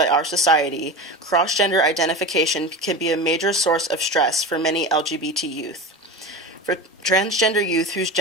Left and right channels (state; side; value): normal; both; correlation 0.27